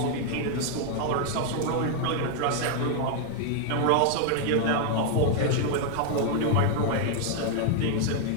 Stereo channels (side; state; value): both; different; correlation 0.00